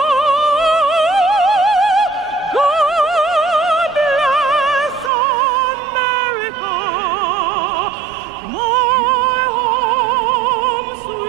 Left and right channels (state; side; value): drops out; left; at 5.1 s